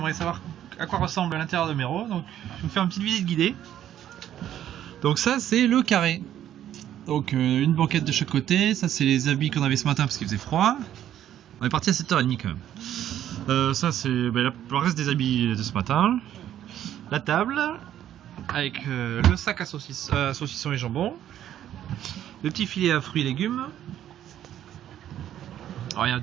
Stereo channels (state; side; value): quieter; left; 11.2 dB